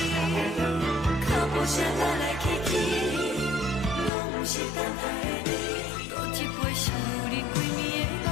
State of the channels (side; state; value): right; drops out; at 4.1 s